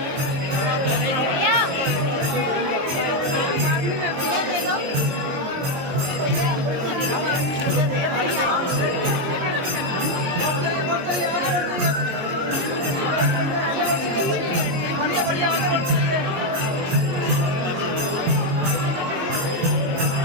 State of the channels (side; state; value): left; late; 22 ms